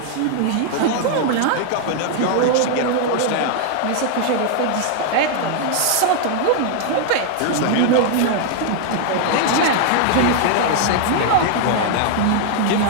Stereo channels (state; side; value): different; both; correlation 0.00